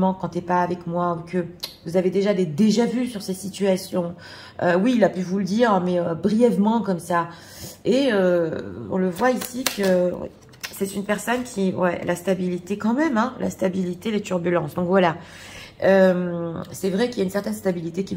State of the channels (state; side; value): identical; both; correlation 1.00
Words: quand tu n'es pas avec moi, ou que vous avez déjà des déjà-vus sur ces situations. Oui, il a pu vous le dire, mais brièvement comme ça. Et on le voit ici que... C'est une personne qui, ouais, la stabilité quand même, hein, la stabilité, les turbulences. Donc voilà, c'est vrai qu'il y a une certaine stabilité